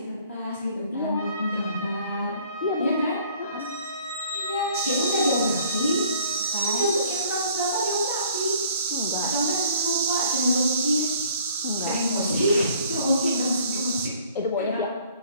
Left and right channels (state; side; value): inverted; both; correlation -0.57